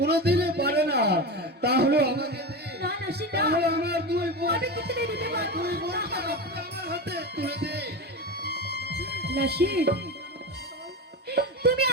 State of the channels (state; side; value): normal; both; correlation 0.22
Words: পারে না। তাহলে আমাকে দিন, না নাসির, না, তাহলে আমার দুই বোন, আমি কিছুতেই দিতে পারবো দুই না। বোনকে আপনি আমার হাতে তুলে দিন। নাসির, তুমি